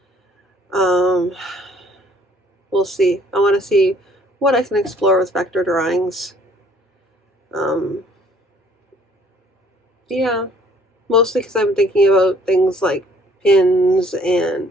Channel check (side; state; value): both; normal; correlation 0.59